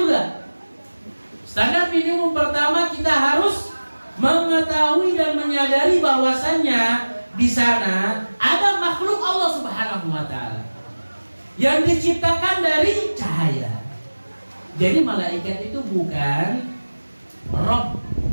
Standar minimum pertama, kita harus mengetahui dan menyadari bahwasannya di sana ada makhluk Allah Subhanahu wa taala yang diciptakan dari cahaya. Jadi malaikat itu bukan Rabb,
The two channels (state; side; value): inverted; both; correlation -1.00